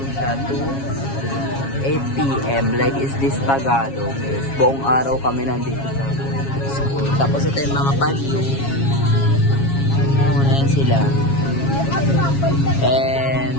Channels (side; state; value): right; late; 7.3 ms